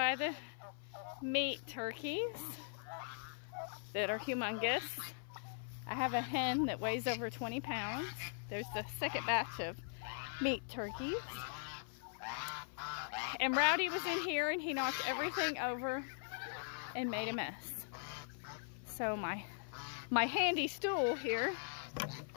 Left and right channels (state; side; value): silent; right; 51 dB below the other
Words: the meat turkeys that are humongous. I have a hen that weighs over 20 pounds. There's the second batch of meat turkeys. And Rowdy was in here and he knocked everything over and made a mess. So my handy stool here